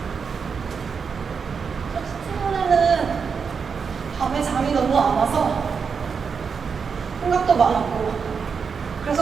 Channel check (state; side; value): quieter; left; 5.9 dB